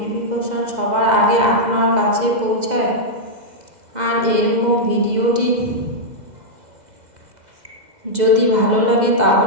সবার আগে আপনার কাছে পৌঁছায়। আর এরকম ভিডিওটি যদি ভালো লাগে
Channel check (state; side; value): late; left; 2.0 ms